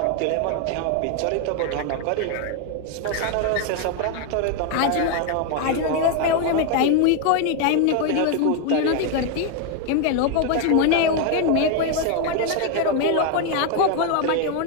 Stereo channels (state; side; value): different; both; correlation 0.01